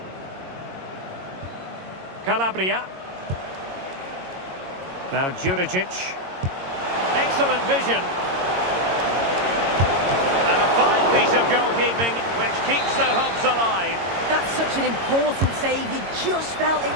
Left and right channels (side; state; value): left; late; 22 ms